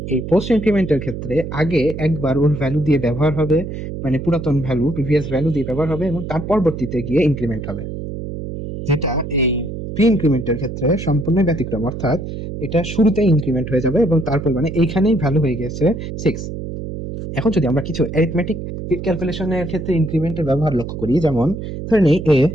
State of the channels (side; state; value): right; noise; hum, 7 dB below the sound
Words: এই পোস্ট ইনক্রিমেন্টের ক্ষেত্রে আগে একবার ওর ভ্যালু দিয়ে ব্যবহার হবে, মানে পুরাতন ভ্যালু প্রিভিয়াস ভ্যালু দিয়ে ব্যবহার হবে এবং তার পরবর্তীতে গিয়ে ইনক্রিমেন্ট হবে, যেটা এই প্রি ইনক্রিমেন্টের ক্ষেত্রে সম্পূর্ণ ব্যতিক্রম। অর্থাৎ এটা শুরুতে ইনক্রিমেন্ট হয়ে যাবে এবং তারপর মানে এইখানেই ভ্যালু হয়ে গেছে 6। এখন যদি আমরা কিছু অ্যারিথমেটিক ক্যালকুলেশনের ক্ষেত্রে ইনক্রিমেন্টের ব্যবহার লক্ষ্য করি, যেমন ধরে নিই এ